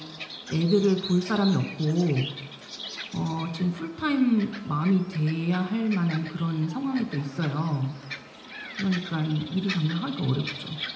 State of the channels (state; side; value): identical; both; correlation 1.00